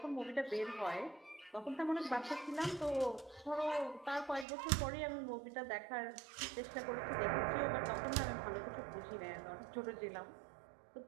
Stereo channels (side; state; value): left; drops out; at 4.5 s